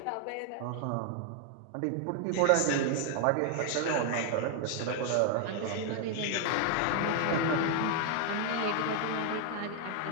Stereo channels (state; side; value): different; both; correlation 0.00